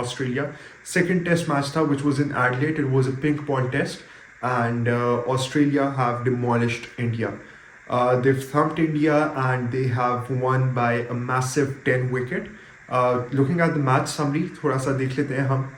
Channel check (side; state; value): both; identical; correlation 1.00